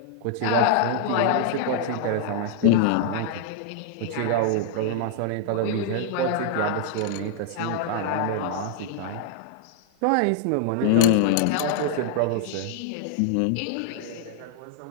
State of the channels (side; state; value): both; different; correlation -0.01